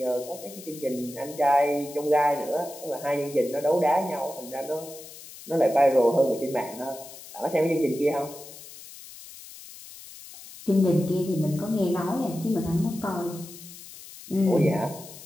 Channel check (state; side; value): noise; left; hiss, 16 dB below the sound